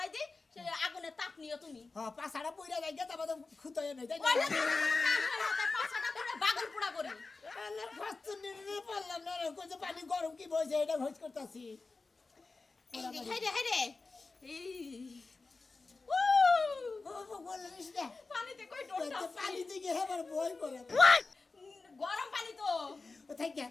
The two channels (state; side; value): quieter; right; 3.8 dB